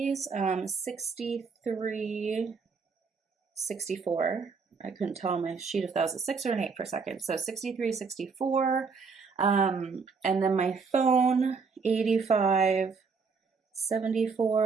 63.64. I couldn't tell on my sheet if that was a 6 or an 8 for a second. So 63.64. And then my phone,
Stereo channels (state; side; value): quieter; left; 5.1 dB